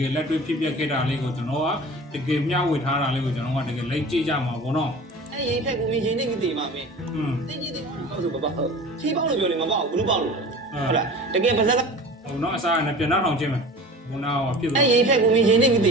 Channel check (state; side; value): normal; both; correlation 0.38